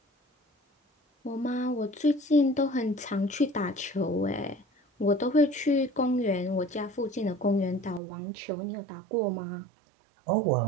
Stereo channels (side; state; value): left; drops out; at 8.0 s